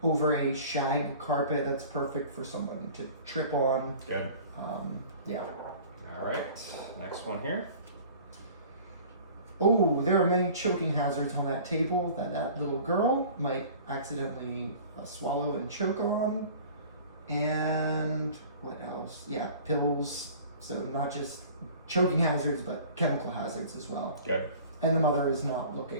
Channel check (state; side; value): inverted; both; correlation -0.45